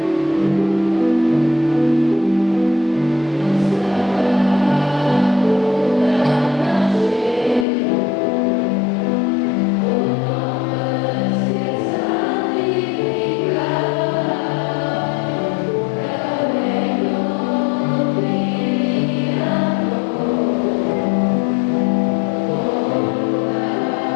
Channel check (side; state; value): right; drops out; at 7.7 s